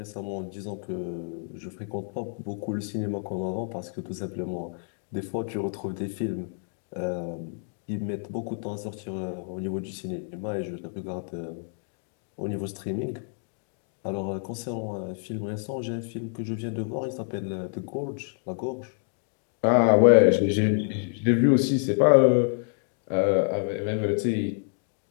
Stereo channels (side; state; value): right; silent; 58 dB below the other